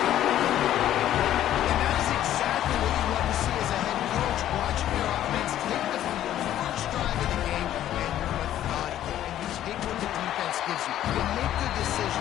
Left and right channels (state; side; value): quieter; right; 12.1 dB